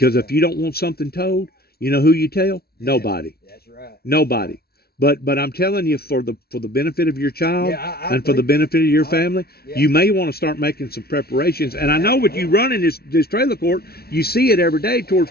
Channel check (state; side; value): late; right; 0.45 ms